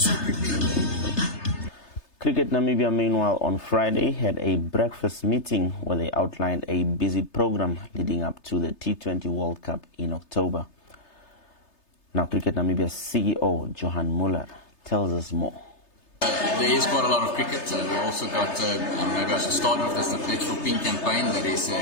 prepared. Cricket Namibia, meanwhile, on Friday had a breakfast meeting where they outlined a busy program leading up to the T20 World Cup in October. Now, Cricket Namibia's CEO, Johan Muller, tells us more. There is quite a lot of cricket. We also got, maybe I should start with this, the Pledge for Pink campaign that is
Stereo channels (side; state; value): right; late; 3.3 ms